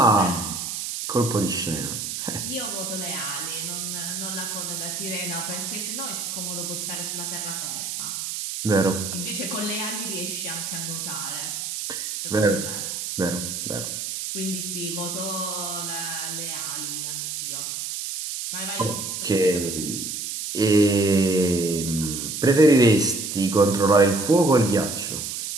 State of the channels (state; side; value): noise; right; hiss, 4 dB below the sound